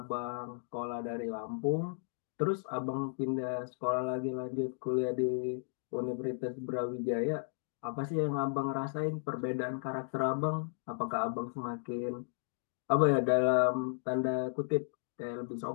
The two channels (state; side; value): silent; right; digital silence